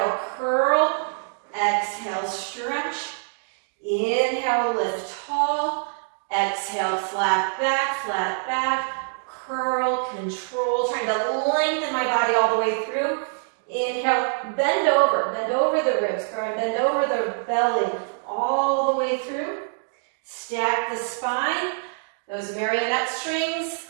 curl. Exhale, stretch. Inhale, lift tall. Exhale, flat back, curl, control. Trying to lengthen my body all the way through. Inhale, bend over the ribs, bend over the belly all the way through. Stack the spine. Those marionette strings,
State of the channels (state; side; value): silent; left; digital silence